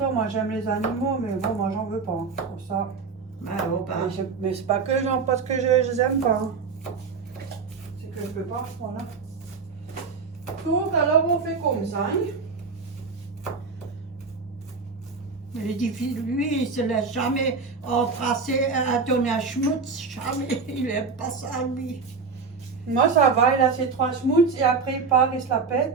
moi, j'aime les animaux, mais bon, moi, j'en veux pas. Hein, pour ça. Oh, bah. Mais c'est pas que parce que je les aime pas. Hein. C'est que je peux pas, voilà. Donc, alors, on fait comme ça. Hein. Mais il dit, lui, il se laisse jamais embrasser, donner un schmutz, jamais. Il aime pas ça, lui. Moi, ça va, il a ses 3 schmutz et après, il part, il se la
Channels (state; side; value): quieter; left; 4.9 dB